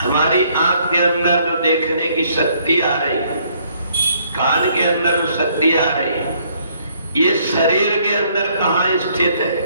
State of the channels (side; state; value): both; inverted; correlation -0.66